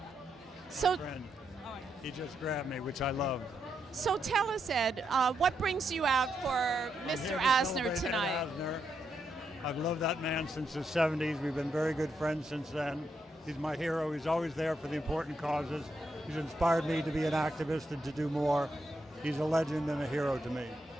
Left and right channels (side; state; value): both; normal; correlation 0.81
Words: so, Friend. He just grabbed me, which I love. so tell us, Ed, what brings you out for I'm Mr. here to Asner celebrate Ed tonight? Asner. I've loved that man since the 70s. We've been very good friends since then. He's my hero. He's always there for the important causes. He's inspired me to be an activist and to do more. He's a legend and a hero to me.